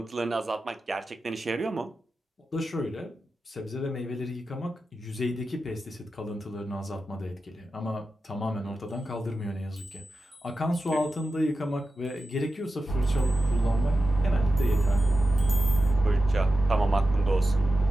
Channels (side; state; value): both; normal; correlation 0.92